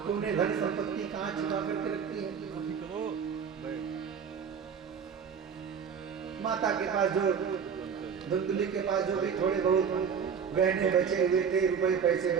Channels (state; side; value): quieter; left; 6.9 dB